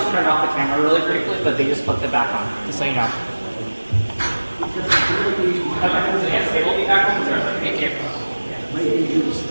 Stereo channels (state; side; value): inverted; both; correlation -1.00